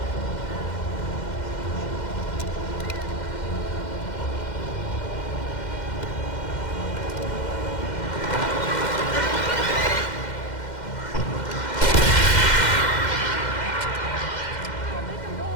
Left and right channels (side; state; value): right; late; 2.1 ms